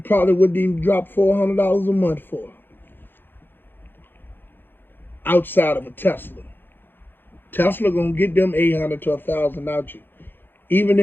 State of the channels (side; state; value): right; late; 0.098 ms